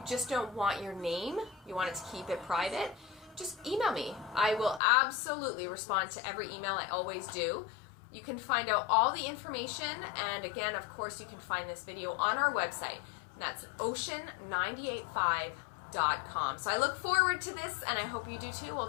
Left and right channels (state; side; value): drops out; right; at 4.8 s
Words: just don't want your name, you want it to keep it private, just email me. I will absolutely respond to every email. I always do. You can find out all the information, and again, of course, you can find this video on our website, and that's ocean985.com. So I look forward to this, and I hope you do too. We'll